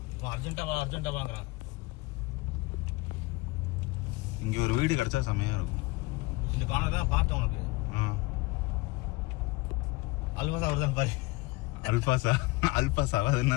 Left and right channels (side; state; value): right; quieter; 22.8 dB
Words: அர்ஜென்ட்டா வாங்குறான். இங்க ஒரு வீடு கிடைச்சா செமையா இருக்கும். இந்த பானை தான் பார்த்தேன் உனக்கு. அல்பாசா வருதான் பாரு. அல்பாசா அது